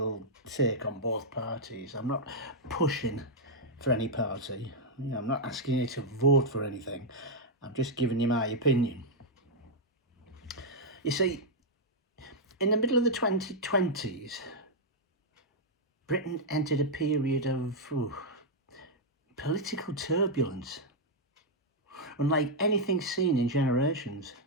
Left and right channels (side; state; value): both; normal; correlation -0.03